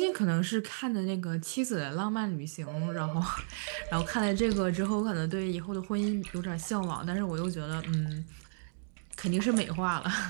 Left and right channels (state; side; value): silent; left; digital silence